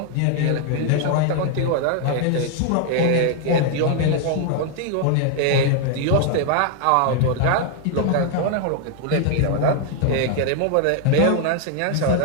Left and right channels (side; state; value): both; different; correlation 0.00